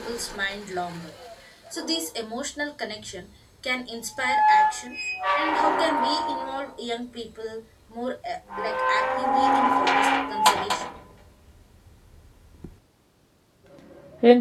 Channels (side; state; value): both; identical; correlation 1.00